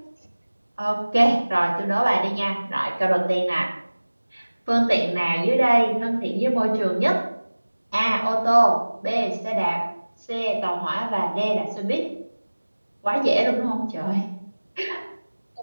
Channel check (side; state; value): both; inverted; correlation -1.00